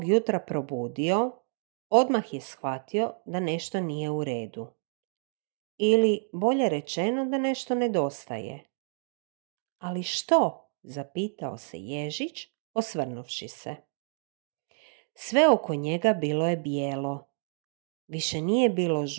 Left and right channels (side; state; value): left; silent; 58 dB below the other